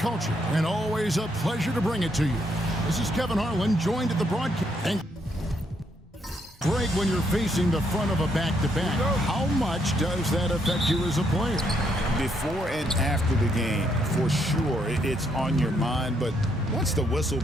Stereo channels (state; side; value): normal; both; correlation 0.74